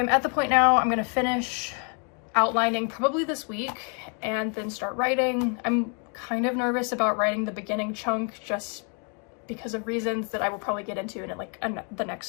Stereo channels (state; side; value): quieter; right; 38.6 dB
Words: at the point now, I'm gonna finish outlining probably this week and then start writing. I'm kind of nervous about writing the beginning chunk just because of reasons that I will probably get into in like the